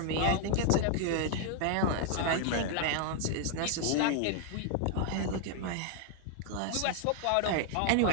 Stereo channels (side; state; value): both; different; correlation 0.00